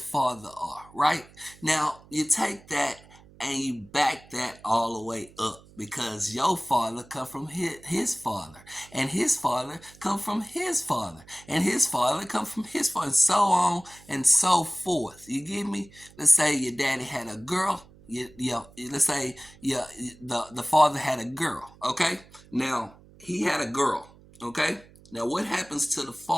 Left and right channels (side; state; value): right; noise; hum, 24 dB below the sound